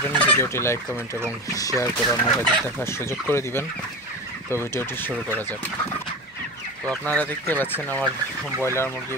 ভিডিওটি লাইক, কমেন্ট এবং শেয়ার করে অন্যদের দেখার সুযোগ করে দিবেন। তো ভিডিওটি শুরু করা যাক। তো আপনারা দেখতে পাচ্ছেন আমার ব্রয়লার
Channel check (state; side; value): noise; right; hum, 30 dB below the sound